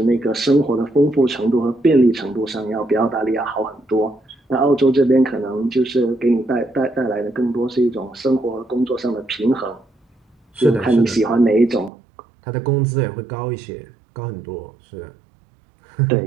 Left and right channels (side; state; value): left; drops out; at 11.9 s